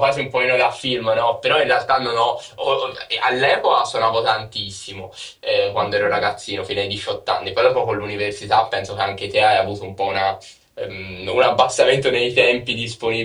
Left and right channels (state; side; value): identical; both; correlation 1.00